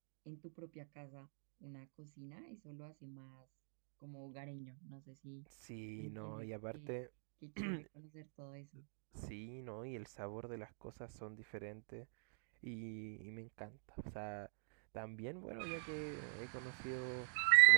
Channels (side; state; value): left; silent; digital silence